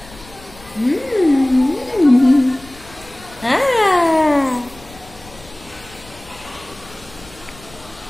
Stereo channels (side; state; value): left; noise; rumble, 22 dB below the sound